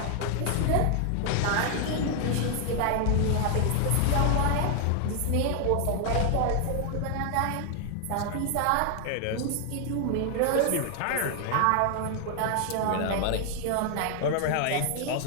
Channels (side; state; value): both; different; correlation 0.00